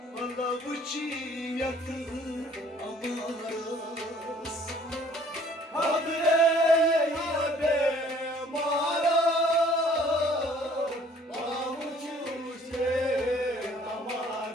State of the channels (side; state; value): both; normal; correlation 0.56